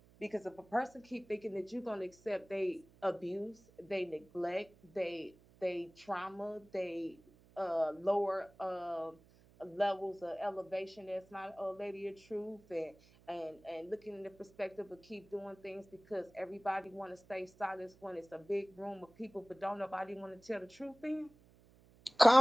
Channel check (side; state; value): right; noise; hum, 26 dB below the sound